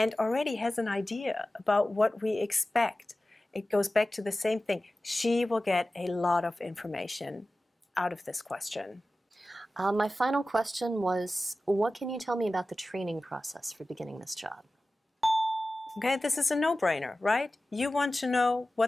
already has an idea about what we expect. It goes back to the same thing. She will get a lot of information out of this question. My final question was, what can you tell me about the training process for beginning this job? Okay, this is a no-brainer, right? You want to know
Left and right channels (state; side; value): normal; both; correlation 0.95